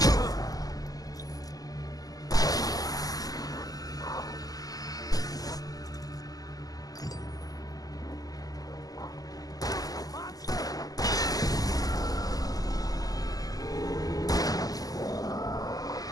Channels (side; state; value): right; late; 0.17 ms